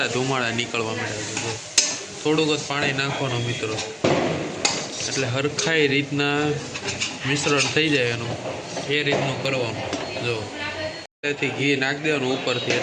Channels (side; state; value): both; identical; correlation 1.00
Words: નીકળવા માંડ્યા છે. જો થોડુંક જ પાણી નાખવાનું મિત્રો, એટલે હરખાઈ રીતના મિશ્રણ થઈ જાય એનું. એ રીતનું કરવાનું. જો તેથી ઘી નાખી દેવાનું ઉપરથી,